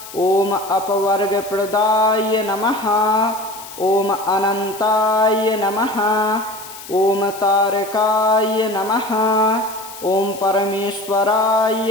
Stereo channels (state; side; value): noise; left; hiss, 15 dB below the sound